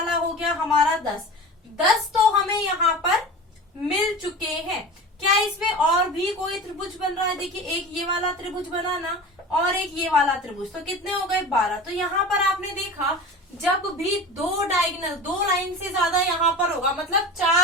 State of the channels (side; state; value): both; normal; correlation 0.34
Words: हो गया हमारा 10 तो हमें यहाँ पर मिल चुके हैं। क्या इसमें और भी कोई त्रिभुज बन रहा है, देखिए एक ये वाला त्रिभुज बना ना, और एक ये वाला त्रिभुज, तो कितने हो गए 12। तो यहाँ पर आपने देखा जब भी 2 डायगोनल 2 लाइन से ज्यादा यहाँ पर होगा, मतलब